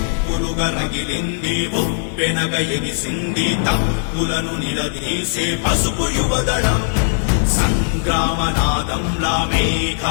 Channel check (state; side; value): silent; right; digital silence